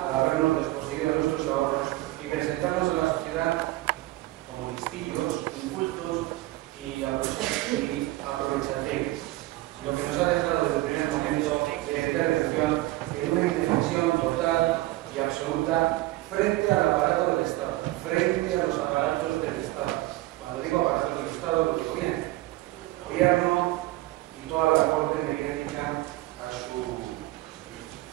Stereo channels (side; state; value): left; quieter; 18.1 dB